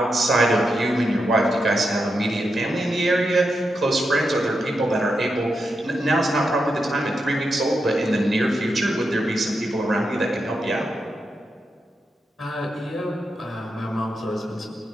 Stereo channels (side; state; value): both; normal; correlation 0.86